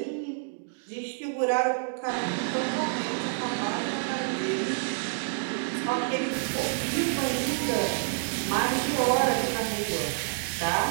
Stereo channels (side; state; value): left; silent; digital silence